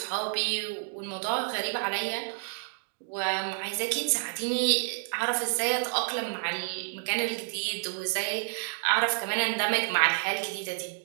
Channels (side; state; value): left; silent; digital silence